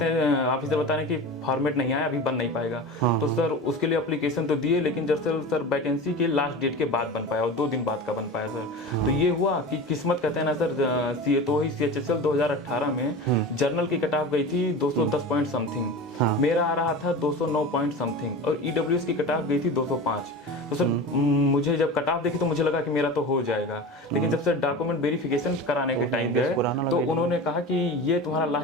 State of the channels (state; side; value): normal; both; correlation 0.31